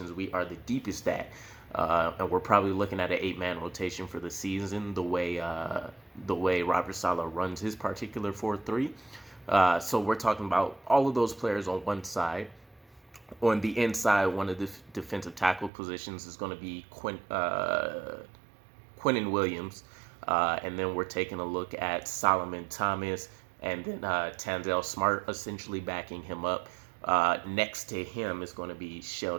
we are the deepest at. And we're probably looking at an 8-man rotation for the season, the way Robert Saleh runs his particular 4-3. So we're talking about all of those players on one side. On the inside, one of the defensive tackle positions is going to be Quentin Williams. And then we're taking a look at Solomon Thomas and then Tanzel Smart essentially backing him up. Next to him is going to be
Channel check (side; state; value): left; drops out; at 15.7 s